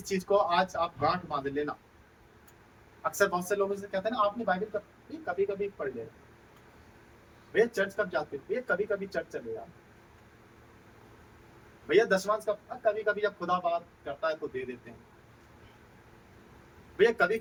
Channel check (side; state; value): both; identical; correlation 1.00